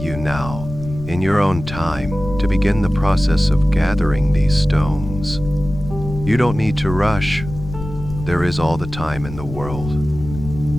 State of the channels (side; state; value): left; noise; rumble, 10 dB below the sound